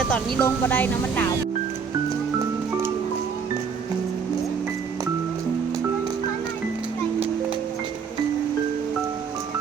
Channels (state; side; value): quieter; left; 6.1 dB